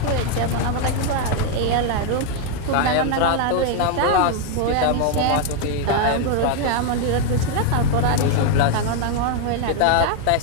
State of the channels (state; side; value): different; both; correlation 0.01